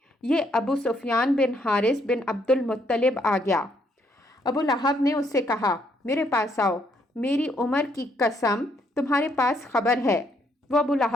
یہ ابو سفیان بن حارث بن عبد المطلب آ گیا۔ ابو لہب نے اس سے کہا میرے پاس آؤ، میری عمر کی قسم تمہارے پاس خبر ہے۔ وہ ابو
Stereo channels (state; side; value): normal; both; correlation 0.71